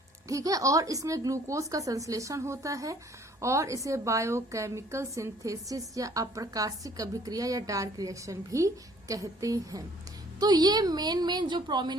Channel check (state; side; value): normal; both; correlation 0.58